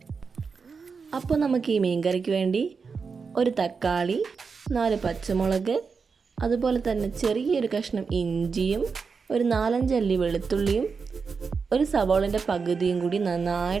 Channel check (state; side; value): quieter; left; 5.2 dB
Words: അപ്പോൾ നമുക്ക് ഈ മീൻ കറിക്ക് വേണ്ടി ഒരു തക്കാളി, 4 പച്ചമുളക്, അതുപോലെ തന്നെ ചെറിയൊരു കഷ്ണം ഇഞ്ചിയും, ഒരു 4-5 അല്ലി വെളുത്തുള്ളിയും, ഒരു സവാളിൻ്റെ പകുതിയും കൂടി